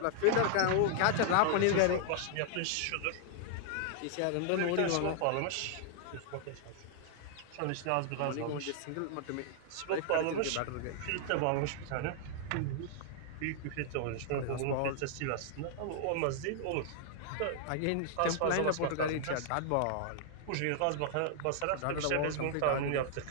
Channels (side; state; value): both; different; correlation -0.01